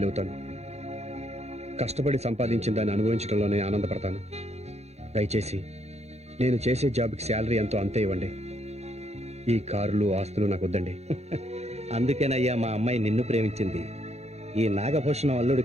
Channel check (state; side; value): late; left; 0.31 ms